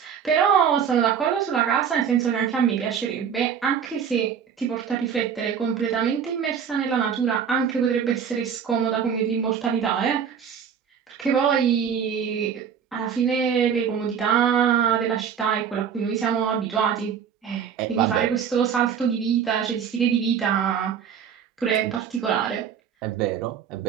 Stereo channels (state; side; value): quieter; left; 7.6 dB